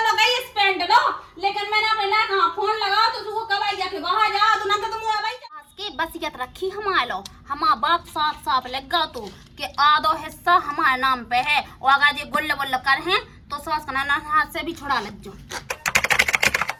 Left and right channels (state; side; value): identical; both; correlation 1.00